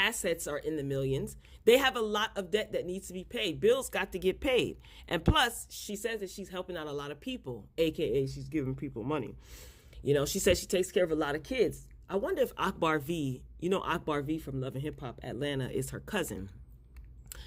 are in the millions. They have a lot of debt that needs to be paid. Bills got to get paid. And plus, she says that she's helping out a lot of people, aka she's giving people money. She says she takes care of a lot of kids. I wonder if Akbar V, Akbar V from Love and Hip Hop Atlanta is her cousin.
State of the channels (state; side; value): identical; both; correlation 1.00